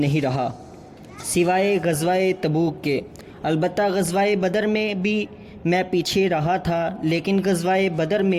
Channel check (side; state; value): both; identical; correlation 1.00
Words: رہا سوائے غزوہ تبوک کے۔ البتہ غزوہ بدر میں بھی میں پیچھے رہا تھا، لیکن غزوہ بدر